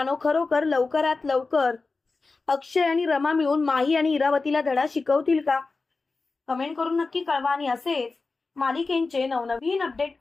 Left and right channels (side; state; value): right; quieter; 3.9 dB